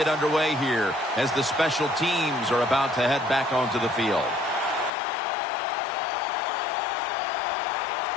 underway here as the special teams are about to head back onto the field.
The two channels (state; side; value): drops out; right; at 4.9 s